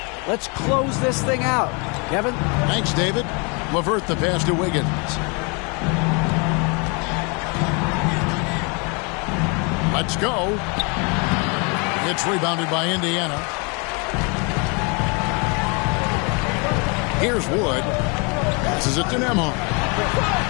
Let's close this thing out. Kevin? Thanks, David. LeVert the pass to Wiggins. Let's go. It's rebounded by Indiana. Here's Wood. Passes it to Nembhard.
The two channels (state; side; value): quieter; right; 32.6 dB